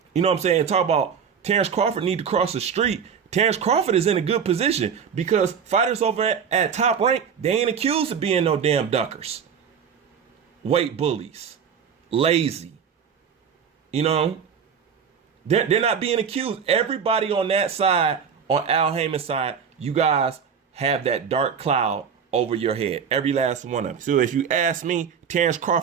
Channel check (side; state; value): left; quieter; 7.0 dB